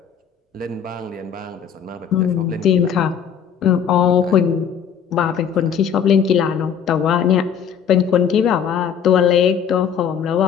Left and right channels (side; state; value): right; quieter; 7.8 dB